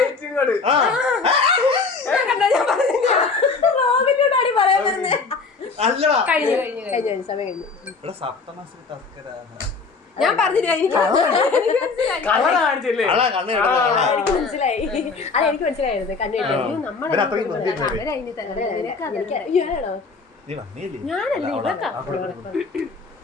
ഞാൻ പറഞ്ഞില്ല. എനിക്ക് മനസ്സിലായി. അതെനിക്ക് മനസ്സിലായിരുന്നു. ഞാനല്ലേ ഇവക്കാ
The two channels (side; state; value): right; quieter; 4.5 dB